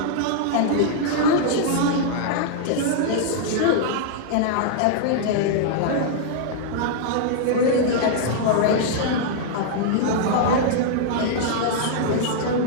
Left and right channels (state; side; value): different; both; correlation -0.01